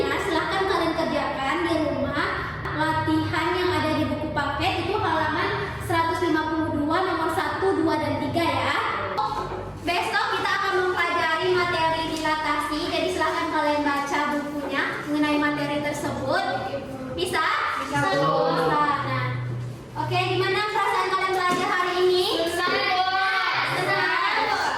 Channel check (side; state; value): both; identical; correlation 1.00